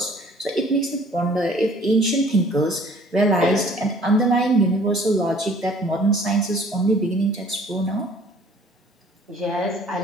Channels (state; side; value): normal; both; correlation 0.54